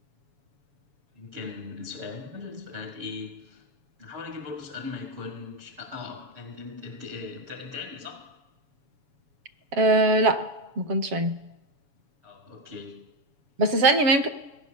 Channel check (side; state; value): left; late; 7.1 ms